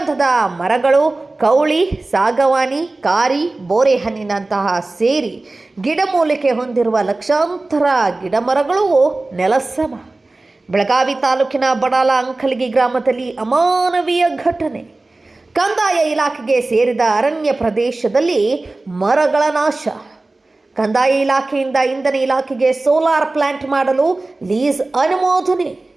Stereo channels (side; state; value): left; quieter; 3.1 dB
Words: ಮರಗಳು, ಕೌಳಿ, ಸಾಗವಾನಿ, ಕಾರಿ, ಬೋರೆಹಣ್ಣಿನಂತಹ ಸೇರಿ ಗಿಡಮೂಲಿಕೆ ಹೊಂದಿರುವ ಲಕ್ಷಾಂತರ ಗಿಡಮರಗಳು ನೆಲಸಮ. ಬೆಳಗಾವಿ ತಾಲೂಕಿನ ಬಡಾಲ ಅಂಕಲಗಿ ಗ್ರಾಮದಲ್ಲಿ ಅಮಾನವೀಯ ಘಟನೆ. ಕಂದಾಯ ಇಲಾಖೆಗೆ ಸೇರಿದ ಅರಣ್ಯ ಪ್ರದೇಶದಲ್ಲಿ ಮರಗಳ ನಾಶ. ಕಂದಾಯ ಇಲಾಖೆಯಿಂದ ಇಂಧನ ಇಲಾಖೆಗೆ ಸೋಲಾರ್ ಪ್ಲಾಂಟ್ ಮಾಡಲು ಲೀಸ್ ಅನುಮೋದನೆ.